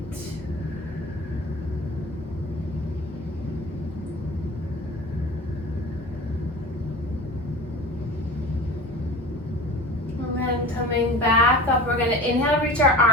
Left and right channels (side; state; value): both; normal; correlation 0.36